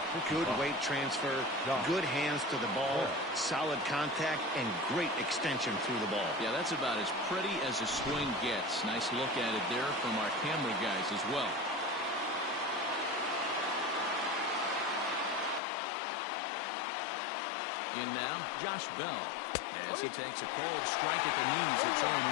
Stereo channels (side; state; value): right; drops out; at 15.6 s